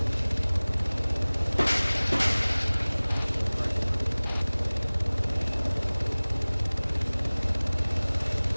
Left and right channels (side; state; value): both; inverted; correlation -1.00